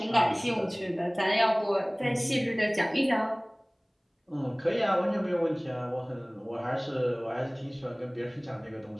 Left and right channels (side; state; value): both; identical; correlation 1.00